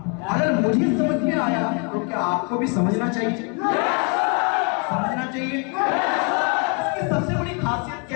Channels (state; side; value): quieter; right; 35.0 dB